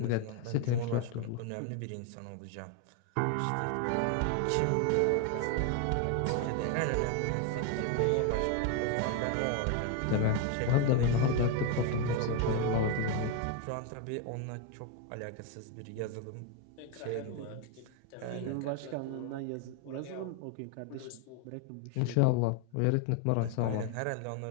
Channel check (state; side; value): different; both; correlation 0.01